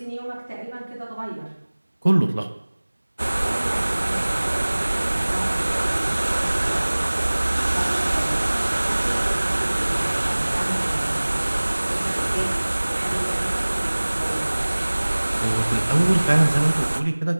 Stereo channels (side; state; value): both; inverted; correlation -1.00